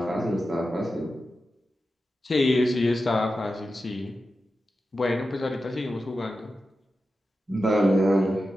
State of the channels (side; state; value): both; normal; correlation 0.91